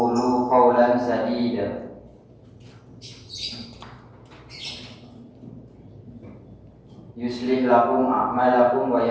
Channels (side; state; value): both; identical; correlation 1.00